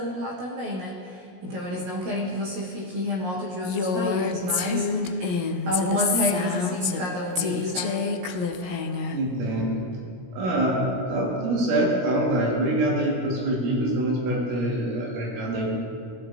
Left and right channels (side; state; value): left; late; 17 ms